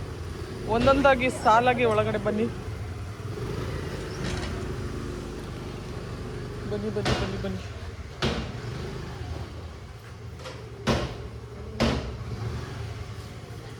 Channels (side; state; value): both; identical; correlation 1.00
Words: ಒಂದೊಂದಾಗಿ ಸಾಲಾಗಿ ಒಳಗಡೆ ಬನ್ನಿ ಬನ್ನಿ ಬನ್ನಿ ಬನ್ನಿ ಬನ್ನಿ.